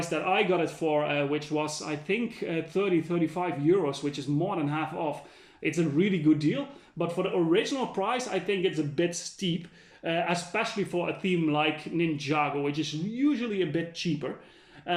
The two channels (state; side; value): identical; both; correlation 1.00